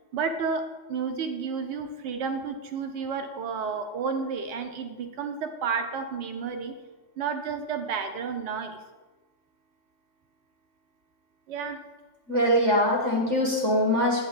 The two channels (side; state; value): left; late; 3.5 ms